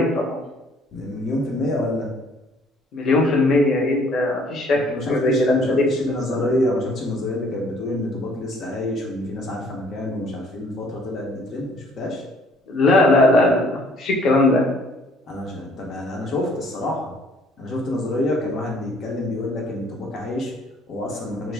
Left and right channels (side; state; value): both; normal; correlation 0.59